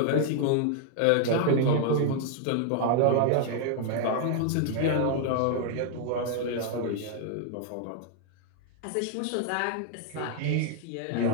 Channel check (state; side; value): different; both; correlation 0.00